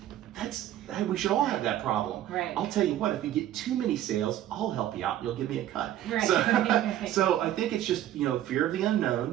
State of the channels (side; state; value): left; quieter; 12.5 dB